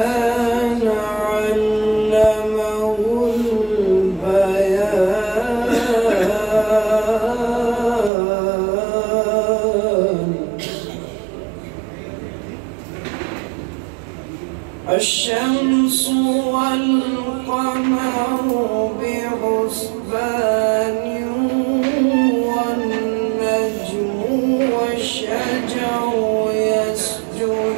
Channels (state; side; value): drops out; left; at 8.1 s